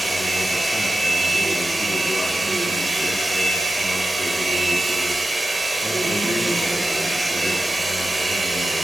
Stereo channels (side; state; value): both; normal; correlation 0.94